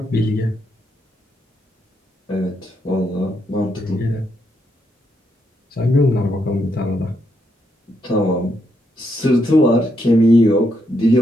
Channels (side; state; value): both; normal; correlation 0.78